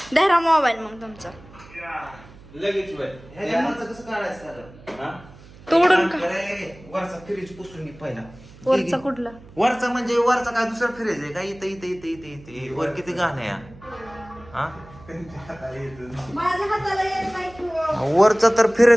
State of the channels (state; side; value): noise; right; hum, 21 dB below the sound